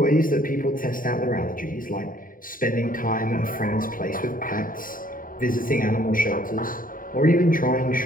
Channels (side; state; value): right; late; 0.40 ms